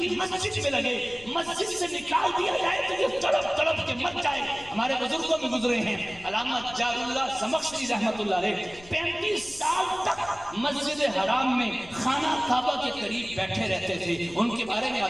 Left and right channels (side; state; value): left; noise; rumble, 21 dB below the sound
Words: مسجد میں لگے. مسجد سے نکال دیا جائے تو یہ تڑپ تڑپ کے مر جائے. ہمارے بزرگوں میں گزرے ہیں علامہ جار اللہ زمخشری رحمت اللہ علیہ 35 سال تک مسجد حرام میں خانہ کعبہ کے قریب بیٹھے رہتے تھے. ان کے بارے میں